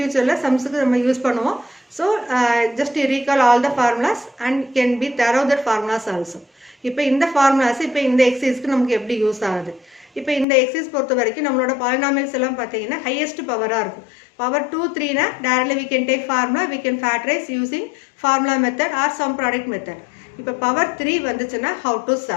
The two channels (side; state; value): right; drops out; at 10.5 s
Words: sumsக்கு நம்ம யூஸ் பண்ணுவோம். So just recall all the formulas and can be thorough the formulas also. இப்போ இந்த formulas இப்போ இந்த exerciseக்கு நமக்கு எப்படி யூஸ் ஆகுது? இப்போ இந்த exercise பொறுத்த வரைக்கும் நம்மளோட polynomials எல்லாம் பாத்தீங்கன்னா highest power-ஆ இருக்கும். Power 2 3 னா directly we can take formula, we can factorize using formula method or sum product method. இப்போ power 3 வந்துச்சுன்னா how to